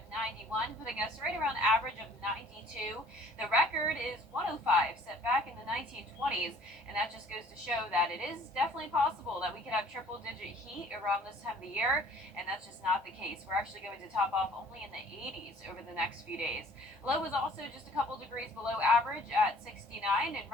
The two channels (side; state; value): both; normal; correlation 0.54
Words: 91, putting us right around average of 92. The record is 105, set back in the 1920s, and that just goes to show that it is definitely possible that we could have triple-digit heat around this time of the year, and that's just not the case. We're actually going to top off only in the 80s over the next few days. Low is also just a couple degrees below average at 69, and